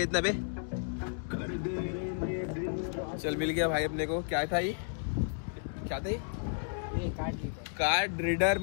इतना पे। चल मिल गया भाई अपने को। क्या था ये, क्या था ये? कार्ड रीडर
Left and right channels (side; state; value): right; silent; digital silence